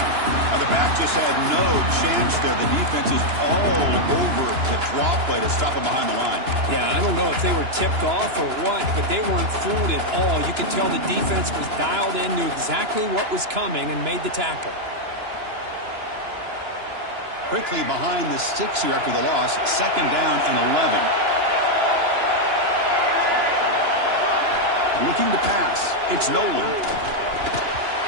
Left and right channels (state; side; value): late; left; 2.9 ms